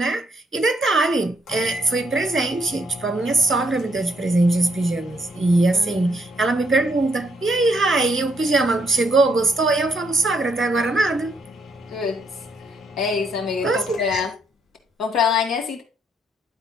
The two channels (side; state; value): both; normal; correlation 0.72